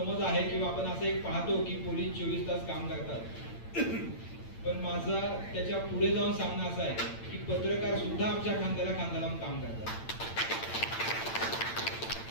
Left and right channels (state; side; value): late; right; 8.9 ms